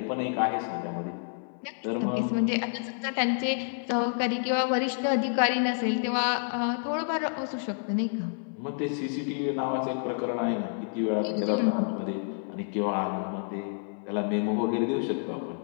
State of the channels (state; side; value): silent; right; 59 dB below the other